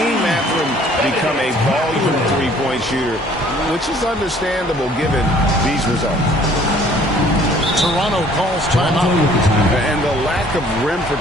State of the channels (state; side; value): normal; both; correlation 0.56